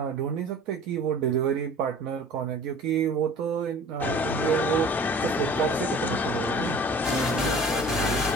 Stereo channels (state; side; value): normal; both; correlation 0.45